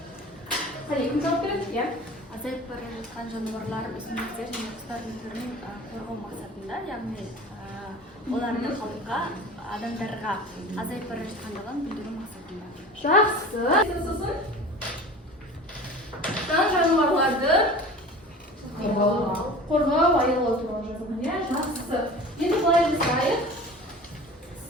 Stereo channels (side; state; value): both; normal; correlation 0.39